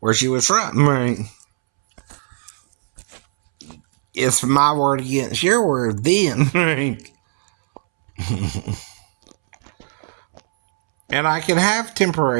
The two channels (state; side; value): silent; left; 66 dB below the other